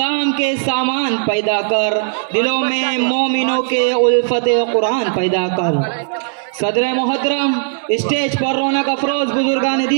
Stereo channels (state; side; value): silent; left; 65 dB below the other